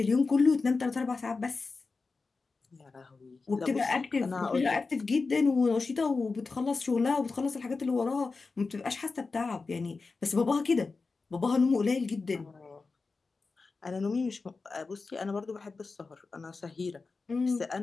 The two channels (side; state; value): right; quieter; 4.1 dB